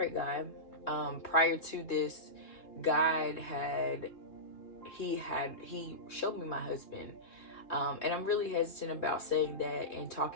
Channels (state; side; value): late; right; 3.5 ms